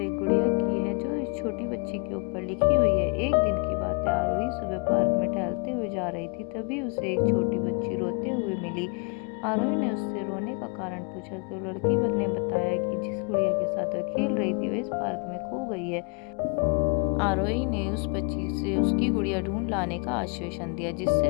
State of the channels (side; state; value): right; quieter; 35.0 dB